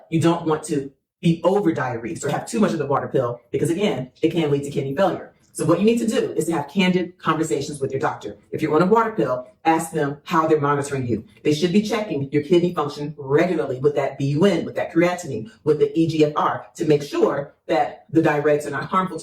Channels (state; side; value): identical; both; correlation 1.00